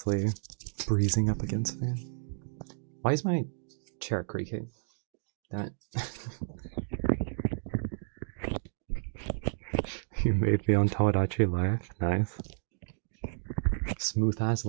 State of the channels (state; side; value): silent; left; digital silence